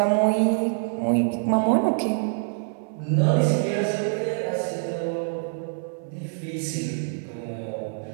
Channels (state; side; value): silent; left; 62 dB below the other